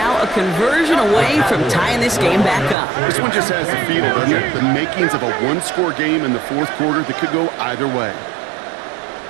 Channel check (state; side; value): drops out; left; at 2.8 s